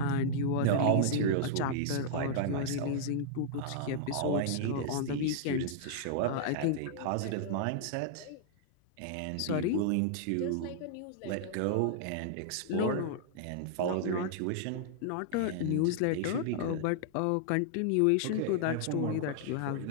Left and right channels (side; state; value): both; different; correlation -0.01